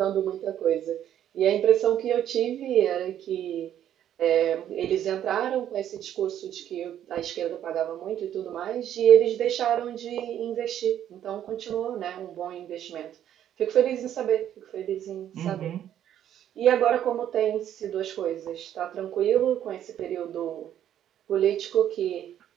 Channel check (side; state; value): left; quieter; 10.7 dB